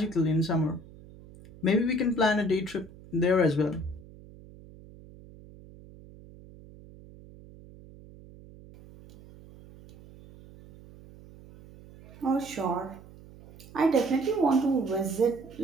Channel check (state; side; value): noise; right; hum, 21 dB below the sound